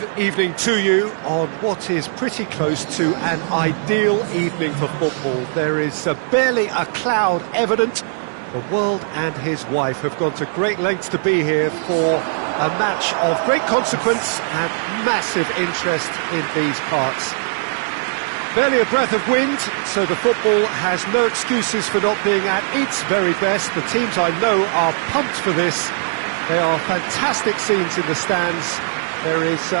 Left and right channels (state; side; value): silent; left; digital silence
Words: evening to you on what is pretty close to an ideal evening for football. There is barely a cloud evident. The world and his wife have gone to great lengths to be here for a match of great consequence and massive interest in these parts. Barely a breath of wind, so the football has no excuses for not being at its very best. The teams I know are pumped for this. They are fantastic scenes in the stands. There is